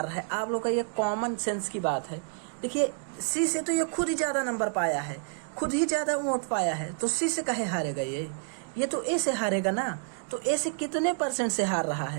रहा है। आप लोग का ये कॉमन सेंस की बात है। देखिए सी से तो ये खुद ही ज़्यादा नंबर पाया है, खुद ही ज़्यादा वोट पाया है, तो सी से काहे हारेगा ये तो ए से हारेगा ना। तो ए से कितने परसेंट से हार रहा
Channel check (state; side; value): silent; left; 59 dB below the other